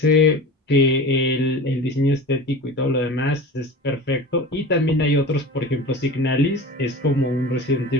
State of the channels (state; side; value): normal; both; correlation 0.34